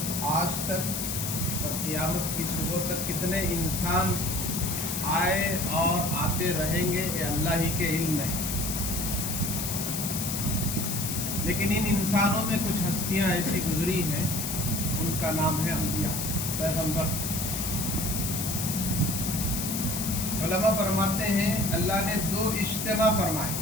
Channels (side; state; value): left; noise; hiss, 3 dB below the sound